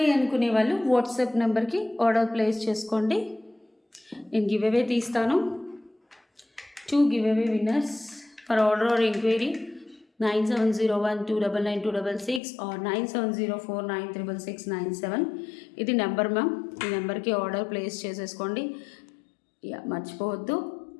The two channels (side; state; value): right; drops out; at 12.4 s